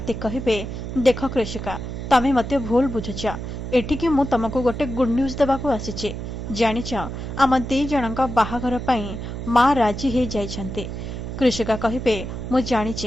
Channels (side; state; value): right; noise; hum, 7 dB below the sound